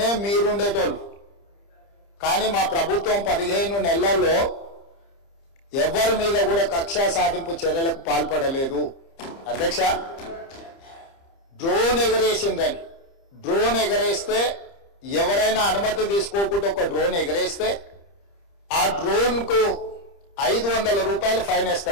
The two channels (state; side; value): late; right; 30 ms